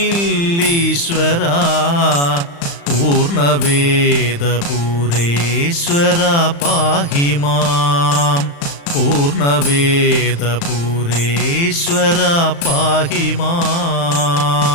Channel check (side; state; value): right; late; 35 ms